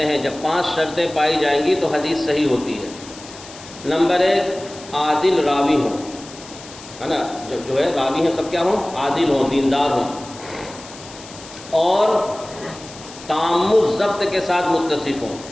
ہیں. جب 5 شرطیں پائی جائیں گی تو حدیث صحیح ہوتی ہے. نمبر 1، عادل راوی ہوں، ہے نا. جو ہے راوی ہیں سب کیا ہوں، عادل ہوں، دیندار ہوں، اور تام الضبط کے ساتھ متصف ہوں،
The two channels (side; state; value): left; noise; hiss, 17 dB below the sound